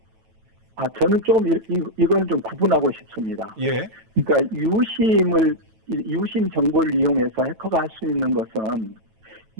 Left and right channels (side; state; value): left; late; 9.1 ms